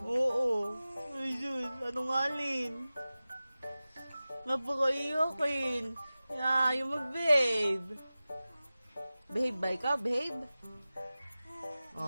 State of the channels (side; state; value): both; inverted; correlation -0.96